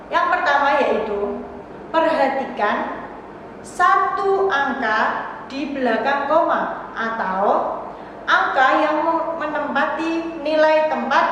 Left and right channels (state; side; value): identical; both; correlation 1.00